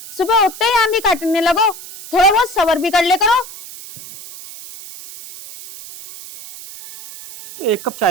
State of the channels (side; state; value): right; noise; hiss, 15 dB below the sound